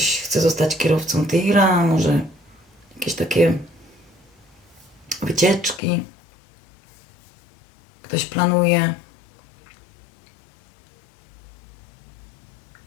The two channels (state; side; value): drops out; right; at 5.8 s